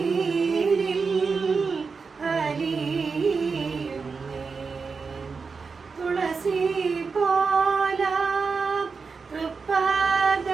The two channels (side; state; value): left; quieter; 4.9 dB